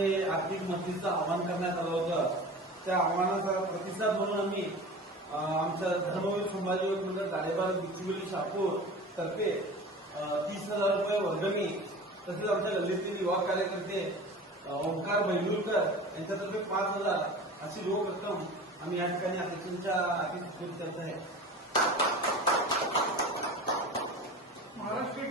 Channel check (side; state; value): both; normal; correlation 0.36